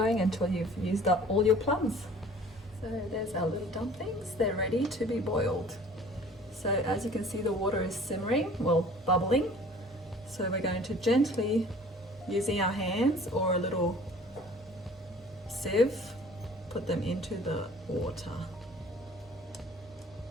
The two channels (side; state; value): both; normal; correlation 0.49